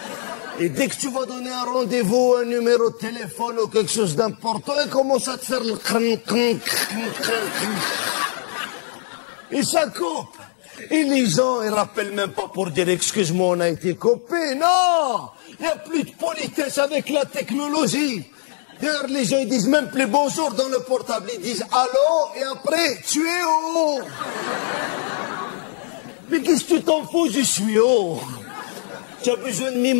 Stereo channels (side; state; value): right; silent; digital silence